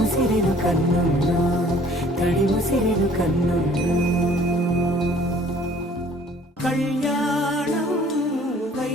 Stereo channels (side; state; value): both; normal; correlation 0.55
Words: కన్నుల్లో తడి ముసిరిలు కన్నుల్లో కళ్యాణం